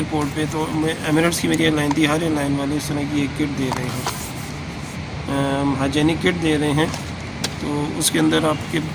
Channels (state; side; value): identical; both; correlation 1.00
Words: पे तो एमिरेट्स की मेरी एयरलाइन थी, हर एयरलाइन वाले इस तरह की एक किट दे रहे हैं, हाइजेनिक किट दे रहे हैं। तो उसके अंदर आपके